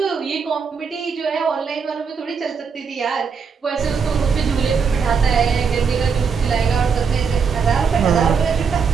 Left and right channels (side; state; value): left; quieter; 5.8 dB